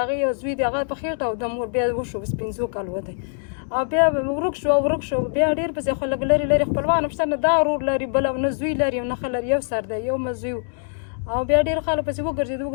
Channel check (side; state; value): right; silent; digital silence